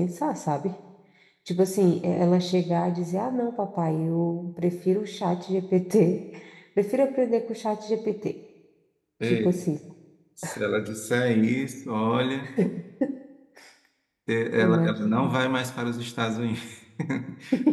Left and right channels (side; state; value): both; identical; correlation 1.00